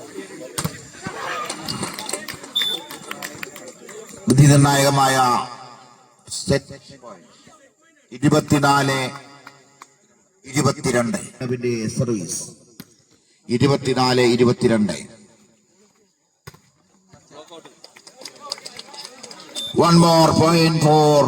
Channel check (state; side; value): identical; both; correlation 1.00